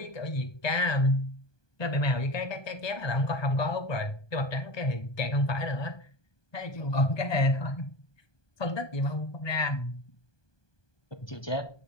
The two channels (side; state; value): right; late; 1.2 ms